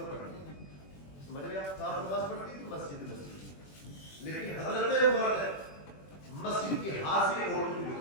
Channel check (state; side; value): late; right; 21 ms